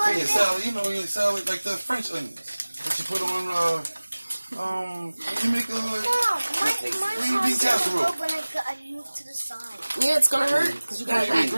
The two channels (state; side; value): inverted; both; correlation -1.00